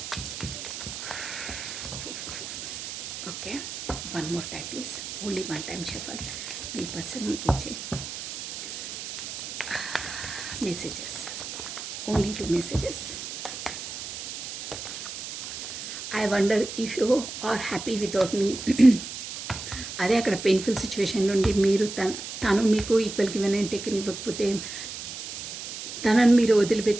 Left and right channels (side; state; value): right; noise; hiss, 8 dB below the sound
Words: okay, 1 more time please, only 1 time shuffle. మీ పర్సన్ మీకు ఇచ్చే messages, only 2 messages. I wonder if you are happy without మీ. అదే అక్కడ పెయిన్ఫుల్ సిచ్యువేషన్ నుండి మీరు తను మీకు ఈక్వల్ గివెన్ అండ్ టేకన్ ఇవ్వకపోతే తనని మీరు